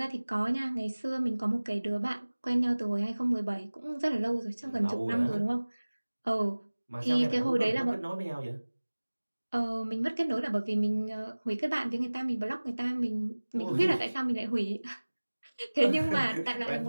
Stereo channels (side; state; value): both; inverted; correlation -1.00